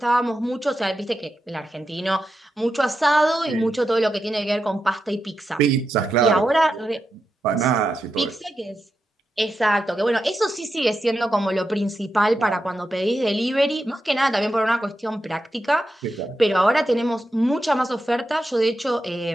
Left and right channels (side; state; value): both; normal; correlation 0.88